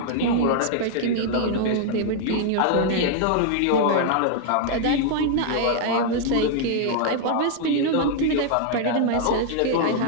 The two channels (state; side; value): different; both; correlation 0.00